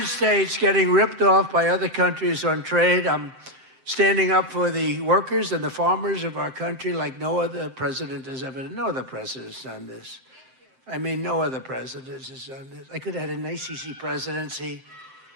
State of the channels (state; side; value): late; left; 7.8 ms